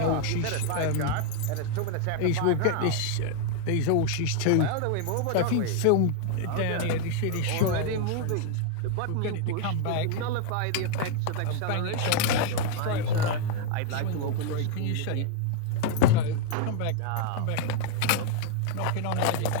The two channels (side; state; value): both; different; correlation 0.00